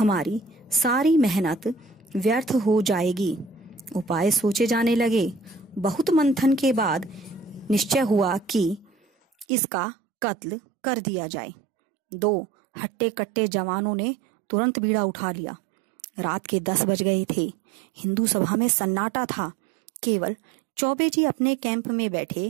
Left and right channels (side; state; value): left; drops out; at 9.5 s